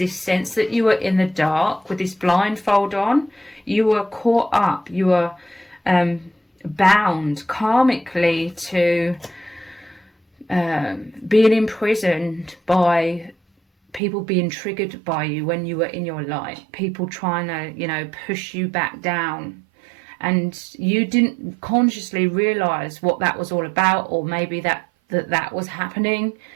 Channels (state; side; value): drops out; left; at 14.0 s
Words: sense that you were in the dark with this blindfold on. You were caught up, you were bound karmically to being imprisoned by people being triggered by you when you were in your light, people trying to, push you back down. And you didn't consciously realize what that was all about, or maybe that was happening.